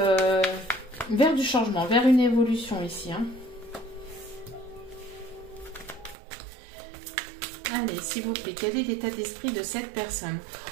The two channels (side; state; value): left; drops out; at 6.2 s